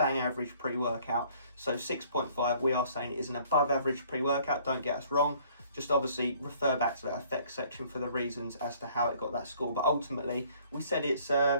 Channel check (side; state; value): both; inverted; correlation -0.58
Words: average pre-workout. So 6.5, we are saying it is an above average pre-workout. Don't get us wrong. Just obviously refer back to that effects section for the reasons as to how it got that score. But ultimately, we said it's